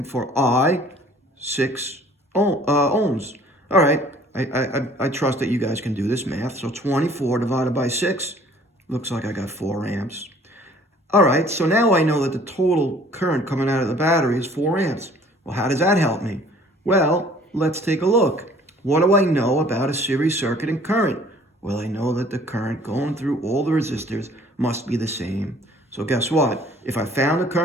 for? 6 ohms. All right. I trust that you guys can do this math. So 24 divided by 6 looks like I got 4 amps. All right. So now I know that the total current coming out of the battery is 4 amps. Well, how does that help me? Well, let's take a look. What do I know about a series circuit and current? Well, I know that the current going through all the resistors must be the same. So guess what? If I found the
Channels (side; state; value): both; normal; correlation 0.54